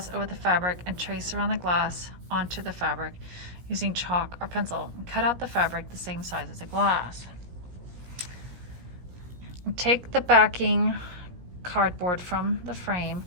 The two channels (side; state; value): left; late; 17 ms